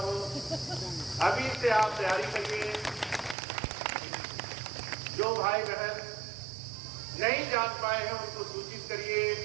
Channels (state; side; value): drops out; left; at 3.4 s